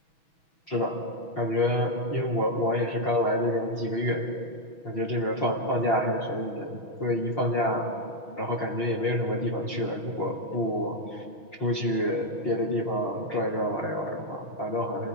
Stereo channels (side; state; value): right; late; 6.2 ms